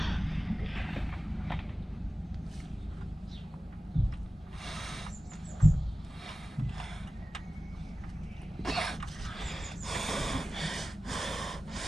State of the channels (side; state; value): both; normal; correlation 0.96